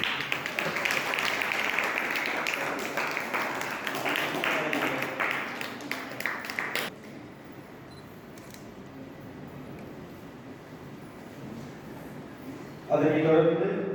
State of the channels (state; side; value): identical; both; correlation 1.00